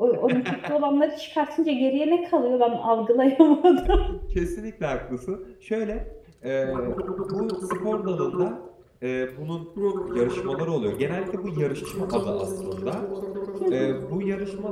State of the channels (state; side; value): identical; both; correlation 1.00